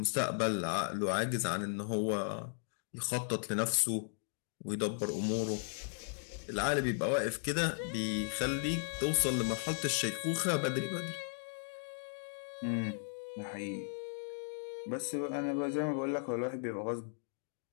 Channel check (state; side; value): silent; right; digital silence